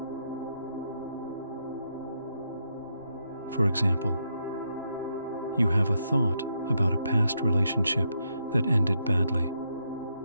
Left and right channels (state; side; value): inverted; both; correlation -0.79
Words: For example, you have a thought about a past relationship that ended badly.